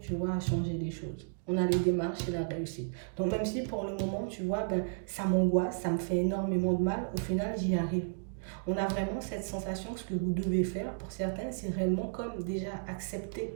tu vois, à changer les choses. On a les démarches et la réussite. Donc même si pour le moment, tu vois, ça m'angoisse, ça me fait énormément de mal, au final, j'y arrive. On a vraiment cette sensation, ce que vous devez faire, pour certains, c'est réellement comme déjà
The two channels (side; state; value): left; silent; digital silence